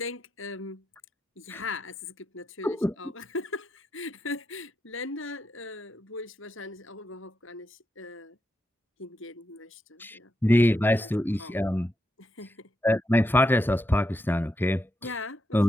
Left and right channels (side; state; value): both; normal; correlation 0.84